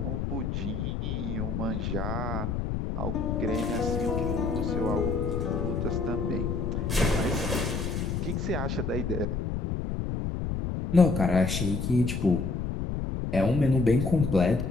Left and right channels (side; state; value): left; noise; rumble, 2 dB below the sound